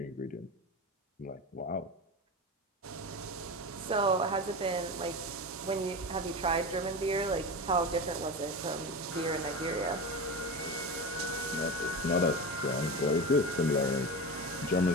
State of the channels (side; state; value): both; normal; correlation 0.24